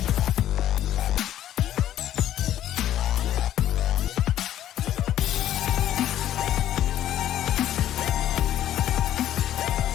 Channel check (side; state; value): right; quieter; 12.0 dB